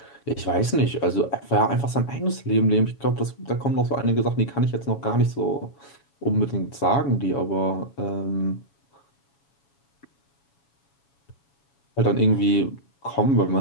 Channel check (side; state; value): right; late; 7.2 ms